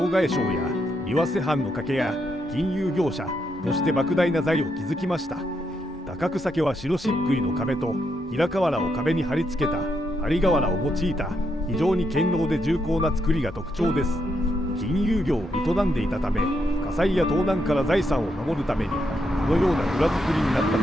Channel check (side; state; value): both; normal; correlation 0.79